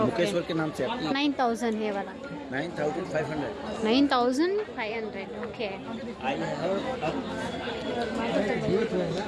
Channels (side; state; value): both; identical; correlation 1.00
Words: मुकेश वर्क के नाम से 9000 है वाला। 9500। 9500 ಓಕೆ.